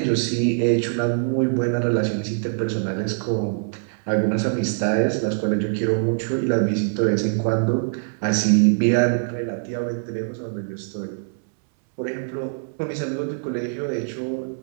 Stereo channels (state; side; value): silent; left; 63 dB below the other